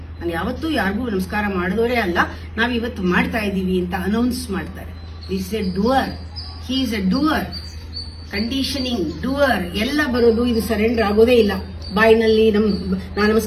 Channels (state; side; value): identical; both; correlation 1.00